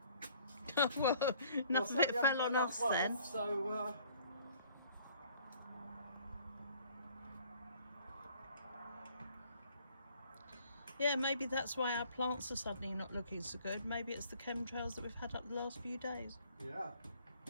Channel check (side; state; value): both; inverted; correlation -0.57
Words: Well, enough of it fell on us then. So, yeah, maybe that's why our plants are suddenly not looking so good. Maybe it's the chemtrails that we've had up the last few days. yeah.